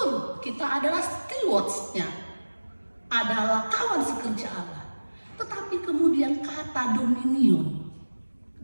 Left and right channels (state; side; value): inverted; both; correlation -1.00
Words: kita adalah stewards-nya, adalah kawan sekerja Allah. Tetapi kemudian kata dominion